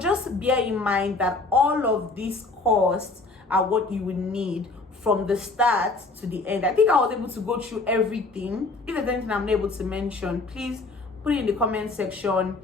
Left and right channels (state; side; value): quieter; right; 3.5 dB